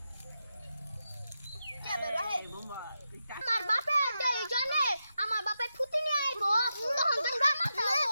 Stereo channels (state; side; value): inverted; both; correlation -0.88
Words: আমার বাপে জানে আমার বাপে ফুটি নিয়ে আইব তখন তোমরা